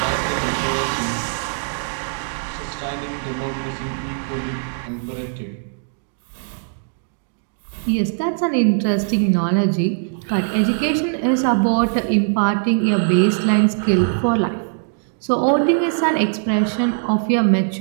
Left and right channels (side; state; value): left; silent; digital silence